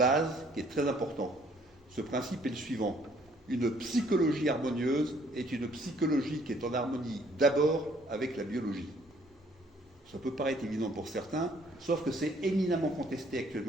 qui est très important. Ce principe est le suivant. Une psychologie harmonieuse est une psychologie qui est en harmonie d'abord avec la biologie. Ça peut paraître évident pour certains, sauf que c'est éminemment contesté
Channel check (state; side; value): normal; both; correlation 0.62